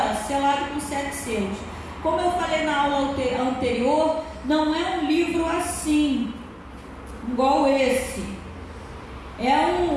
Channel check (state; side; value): identical; both; correlation 1.00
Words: selado com 7 selos. Como eu falei na aula anterior, não é um livro assim, igual esse. É